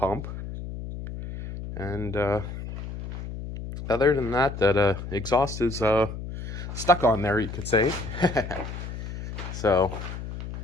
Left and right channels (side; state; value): left; noise; hum, 8 dB below the sound